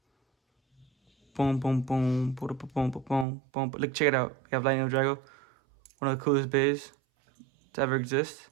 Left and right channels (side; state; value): left; drops out; at 3.2 s